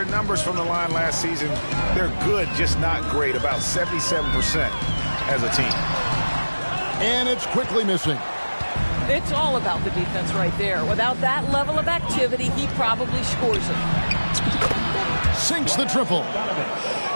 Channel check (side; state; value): both; inverted; correlation -1.00